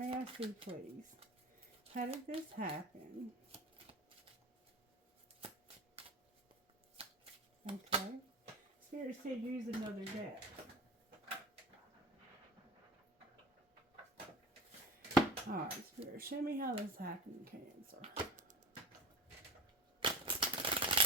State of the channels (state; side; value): normal; both; correlation 0.33